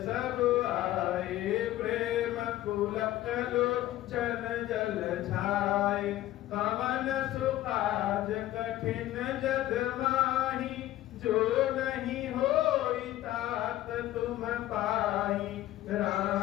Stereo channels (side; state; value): right; quieter; 14.7 dB